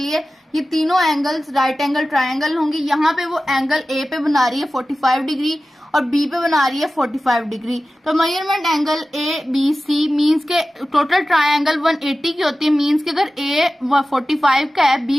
ये तीनों एंगल्स राइट एंगल ट्राइंगल होंगे। यहाँ पे वो एंगल A पे बना रही है 45 डिग्री और B पे बना रही है 45 डिग्री। तो मेजरमेंट एंगल ABC मीन्स के टोटल ट्राइंगल 180 की होती है। मीन्स के अगर A 45 का है,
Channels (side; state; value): both; normal; correlation 0.95